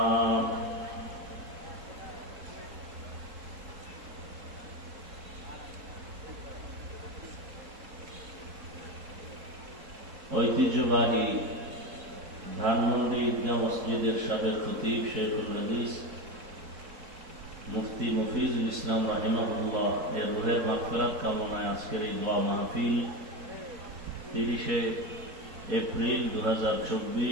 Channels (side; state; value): left; late; 4.1 ms